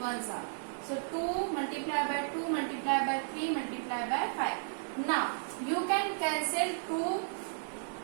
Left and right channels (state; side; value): silent; left; digital silence